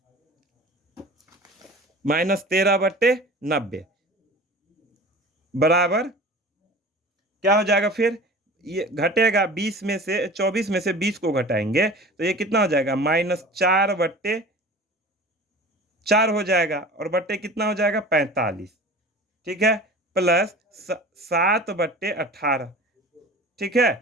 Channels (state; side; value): normal; both; correlation 0.39